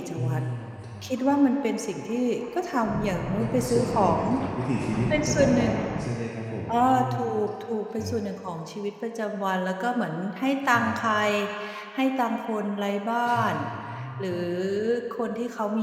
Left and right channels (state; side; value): identical; both; correlation 1.00